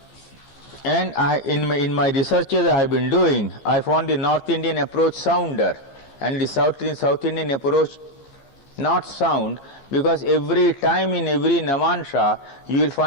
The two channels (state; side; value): late; right; 15 ms